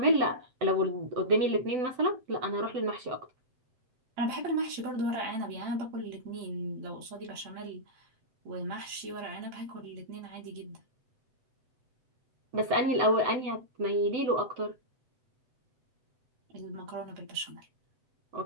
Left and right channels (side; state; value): left; late; 7.9 ms